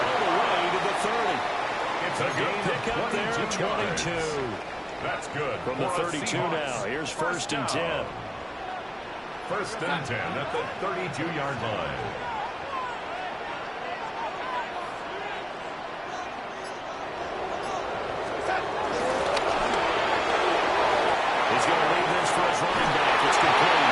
the way to the 30. It's a good pickup there, 22. That's good. From the 32 now, here's 1st and 10. 1st and 10 at the 32-yard line. He's going to leave this for his running back. It's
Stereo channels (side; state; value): both; identical; correlation 1.00